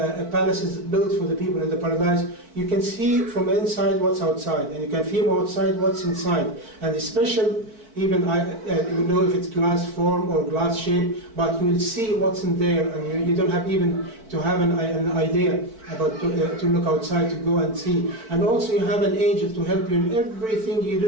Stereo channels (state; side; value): late; left; 4.5 ms